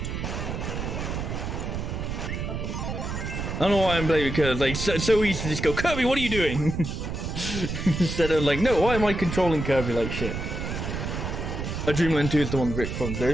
I don't know why I'm blaming Kirby. Like, so easy to just go, Kirby, what are you doing? Instead of like, no, why am I controlling Kirby like shit? I Dreamland 2 is the one Rick from there.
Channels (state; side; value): noise; right; rumble, 4 dB below the sound